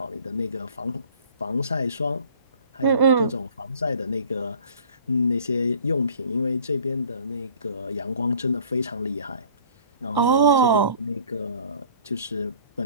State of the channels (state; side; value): inverted; both; correlation -0.51